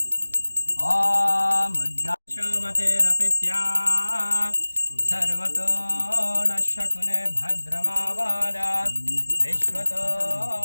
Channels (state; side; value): inverted; both; correlation -1.00